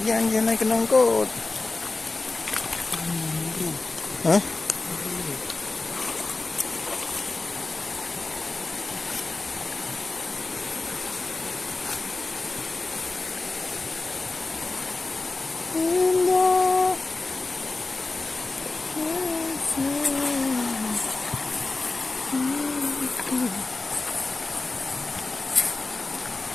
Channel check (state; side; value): quieter; right; 3.5 dB